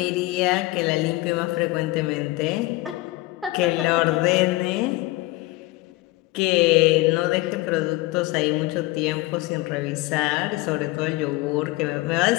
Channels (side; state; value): right; quieter; 20.2 dB